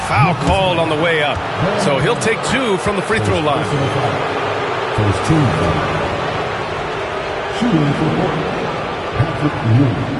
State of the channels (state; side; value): identical; both; correlation 1.00